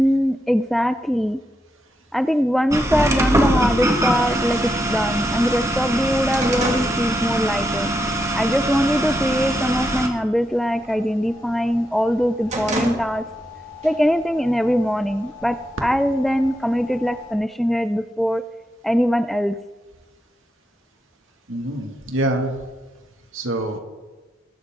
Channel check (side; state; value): both; normal; correlation 0.84